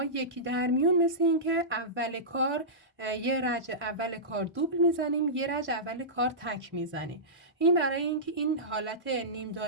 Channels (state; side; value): normal; both; correlation -0.17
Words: یکی در میون، مثل این که اول کار یه رج اول کار دوبل میزنیم، یه رج اول کار تک میزنیم. این برای اینکه این حالت نیم